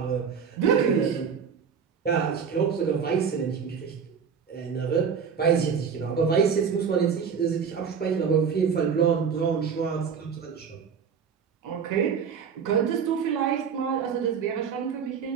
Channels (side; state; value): left; quieter; 6.6 dB